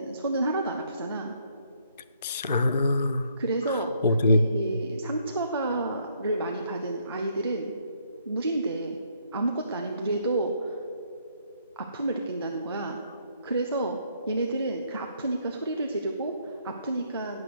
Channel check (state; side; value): inverted; both; correlation -0.69